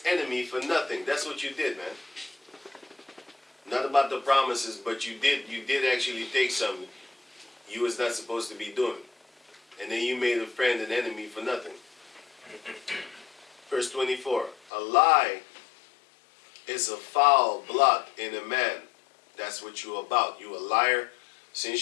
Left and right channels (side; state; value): right; drops out; at 14.6 s